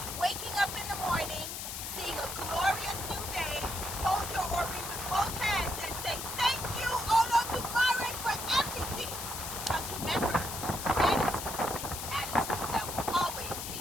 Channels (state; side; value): noise; left; hiss, 6 dB below the sound